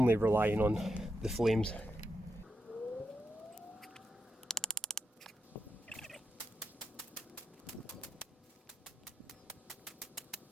relying on the flames.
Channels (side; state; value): both; normal; correlation 0.86